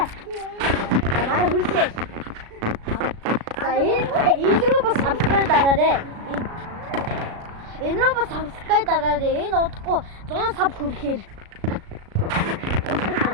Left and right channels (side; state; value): left; late; 36 ms